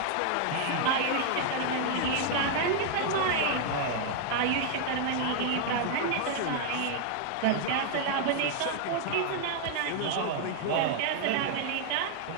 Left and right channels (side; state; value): both; different; correlation 0.00